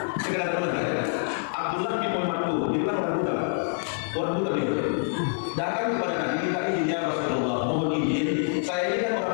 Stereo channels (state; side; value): silent; right; 61 dB below the other